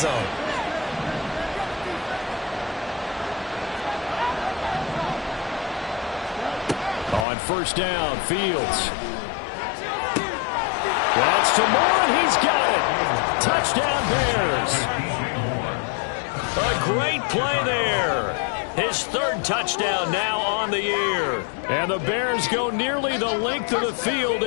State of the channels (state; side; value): drops out; right; at 7.2 s